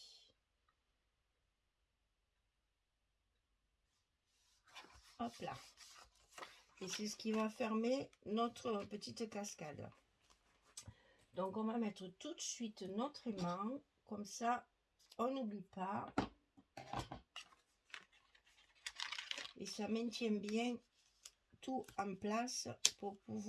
Hop là. Et c'est ce qui va fermer notre petite cascade. Donc on va mettre tout de suite notre aimant. Comme ça, on n'oublie pas. Et ça maintient bien tout en place pour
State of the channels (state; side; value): identical; both; correlation 1.00